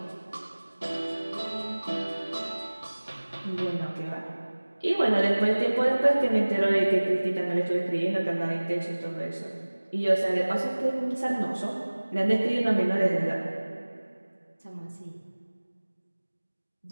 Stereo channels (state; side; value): inverted; both; correlation -1.00